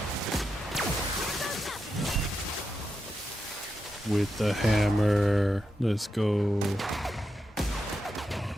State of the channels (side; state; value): both; normal; correlation 0.87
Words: With the hammer. Let's go. I